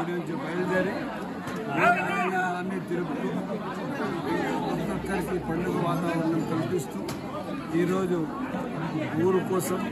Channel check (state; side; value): identical; both; correlation 1.00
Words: నుంచి బయలుదేరి అన్ని తిరుగుతూ ఒక్కొక్కరికి పండుగ వాతావరణం కల్పిస్తూ ఈరోజు ఊరు కోసం,